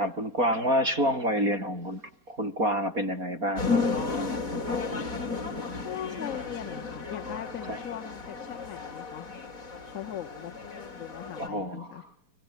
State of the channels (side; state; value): left; late; 4.1 ms